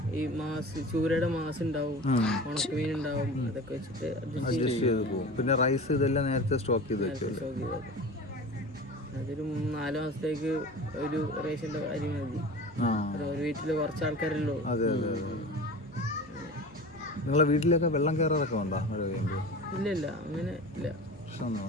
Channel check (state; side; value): normal; both; correlation 0.34